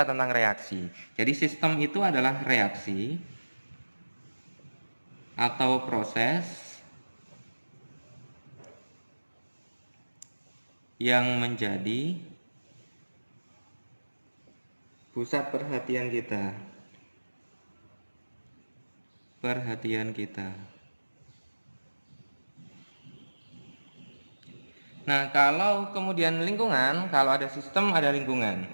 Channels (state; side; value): inverted; both; correlation -1.00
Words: tentang reaksi. Jadi sistem itu adalah reaksi atau proses yang menjadi pusat perhatian kita. Nah, kalau kemudian lingkungan, kalau ada sistem, ada lingkungan.